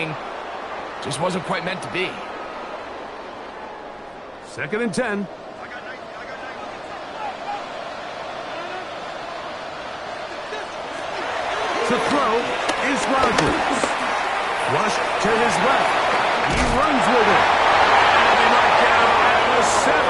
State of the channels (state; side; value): identical; both; correlation 1.00